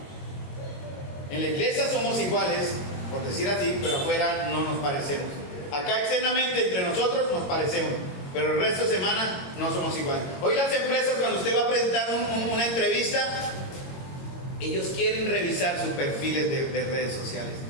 En la iglesia somos iguales, por decir así, pero afuera no nos parecemos. Acá externamente entre nosotros nos parecemos, pero el resto de semana no somos iguales. Hoy las empresas, cuando usted va a presentar una entrevista, ellos quieren revisar sus perfiles de redes sociales.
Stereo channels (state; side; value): late; right; 22 ms